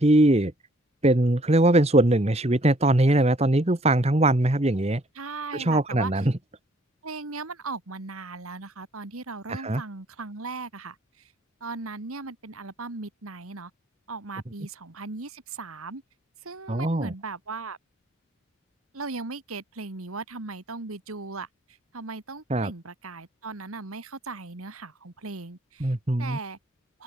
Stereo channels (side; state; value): both; normal; correlation 0.62